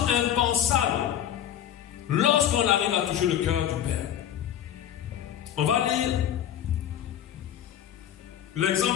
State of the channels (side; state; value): right; quieter; 10.6 dB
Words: impensable. Lorsqu'on arrive à toucher le cœur du Père. On va lire